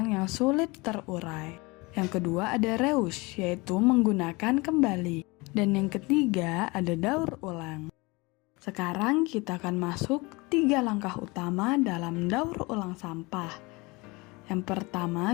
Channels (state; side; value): quieter; right; 25.0 dB